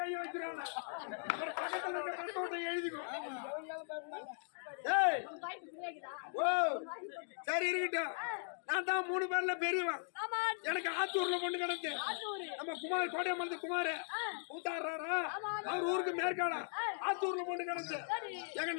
வச்சிருவாங்க. ஒரு பக்கத்துல இருக்க கட்டோட்டை எழுதிக்கும். ஏய் ஓ சரி இருக்கட்டும். நான் தான் 3 பேர்ல பெரியவன். எனக்கு ஆத்தூர்ல பொண்ணு கிடந்து நம்ம குமார் கோட்டையம்மன் குமார் ஊத்தாடுறாரா அவர் ஊருக்கு மேற்காடா ஆத்தூர்ல பொண்ணு கிடந்து எங்க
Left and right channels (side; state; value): right; silent; digital silence